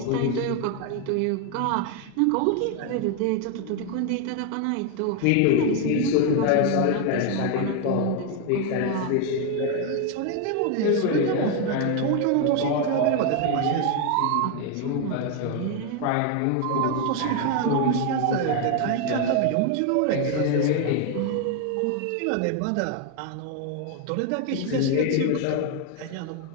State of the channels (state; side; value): different; both; correlation 0.01